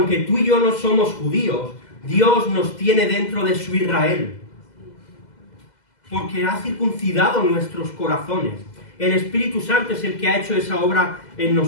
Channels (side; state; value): right; late; 2.0 ms